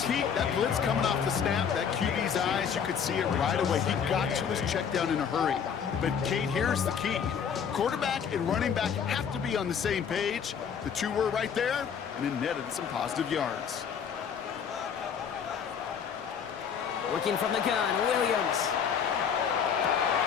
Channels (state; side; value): quieter; right; 7.3 dB